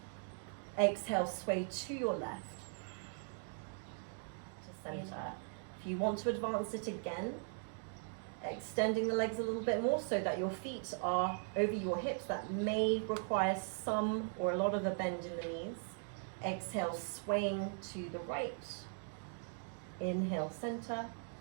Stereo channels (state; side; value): silent; left; 51 dB below the other